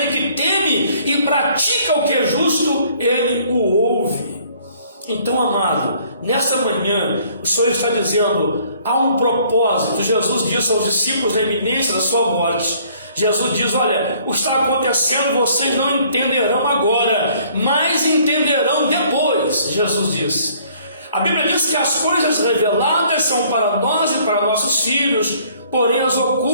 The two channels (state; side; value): inverted; both; correlation -0.59